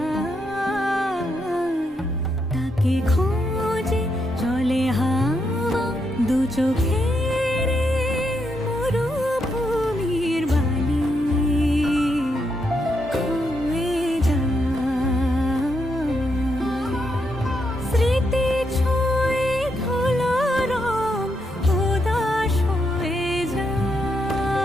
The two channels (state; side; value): normal; both; correlation 0.80